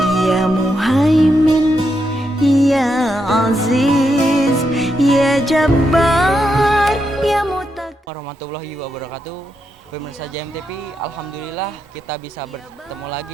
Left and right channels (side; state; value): both; normal; correlation 0.83